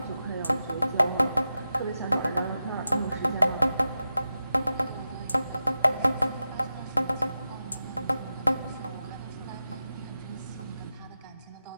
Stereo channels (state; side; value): inverted; both; correlation -0.90